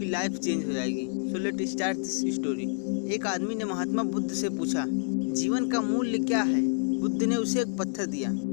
लाइफ चेंज हो जाएगी। So let start this story. एक आदमी ने महात्मा बुद्ध से पूछा, जीवन का मूल्य क्या है? बुद्ध ने उसे एक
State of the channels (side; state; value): right; silent; 59 dB below the other